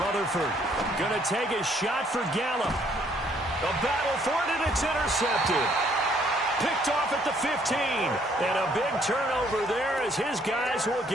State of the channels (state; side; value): normal; both; correlation 0.65